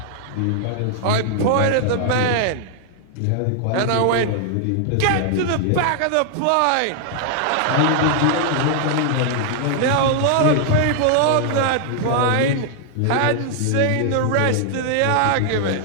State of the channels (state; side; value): different; both; correlation 0.00